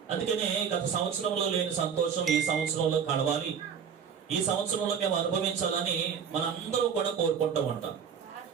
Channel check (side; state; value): left; quieter; 7.3 dB